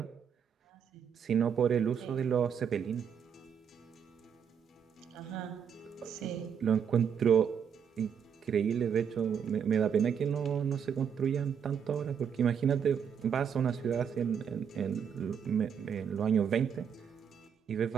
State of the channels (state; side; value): quieter; left; 7.6 dB